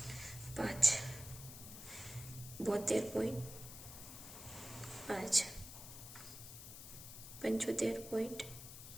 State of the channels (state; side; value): noise; left; hiss, 12 dB below the sound